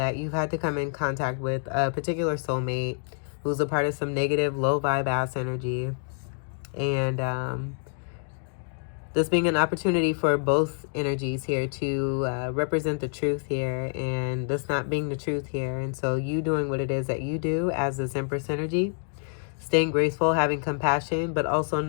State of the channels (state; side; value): silent; right; digital silence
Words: you've had to come in contact with a particular soulmate who's a part of some negative, low vibe ass energy. And this being an opportunity for both energies here to represent the truth here, and this not being the truth here. And so you doing what it is that you do as this Empress energy, staying graceful, having compassion, but also